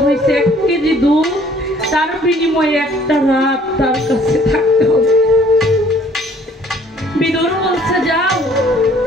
হয়েছে 1 কেজি দুধ, তার বিনিময়ে একটা রাত তার কাছে থাকতে হবে। বিদুর বলছে যাও,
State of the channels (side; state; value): both; normal; correlation 0.58